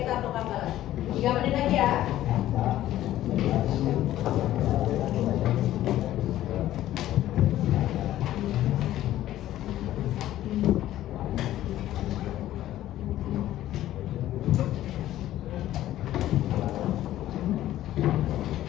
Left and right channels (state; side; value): quieter; right; 13.6 dB